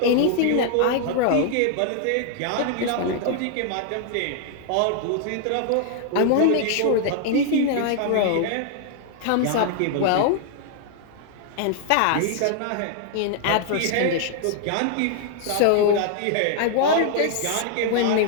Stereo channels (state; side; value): different; both; correlation 0.00